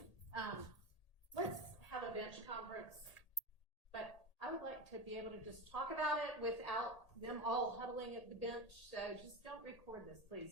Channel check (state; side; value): late; right; 1.8 ms